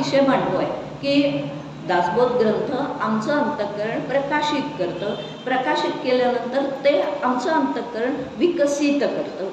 मांडतो आहे की दासबोध ग्रंथ आमचं अंतःकरण प्रकाशित करतं. प्रकाशित केल्यानंतर ते आमचं अंतःकरण विकसित करतं.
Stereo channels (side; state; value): both; identical; correlation 1.00